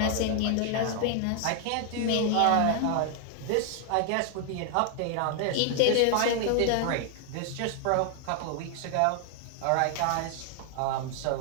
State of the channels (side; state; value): both; different; correlation 0.00